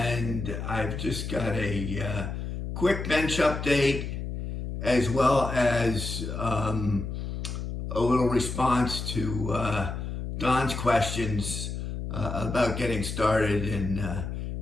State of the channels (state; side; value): noise; left; hum, 5 dB below the sound